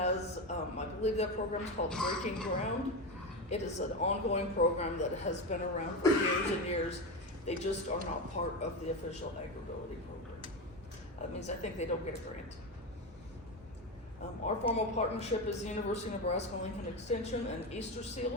I believe that program is called Breaking Ground. It is an ongoing program that has been around for years and years. They just are not part of the official AgrAbility program. That means I think they don't get a grant. Our formal partnership is the University of Nebraska-Lincoln Extension and Easter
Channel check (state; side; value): normal; both; correlation 0.17